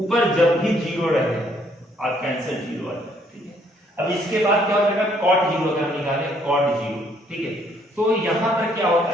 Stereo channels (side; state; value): both; normal; correlation 0.67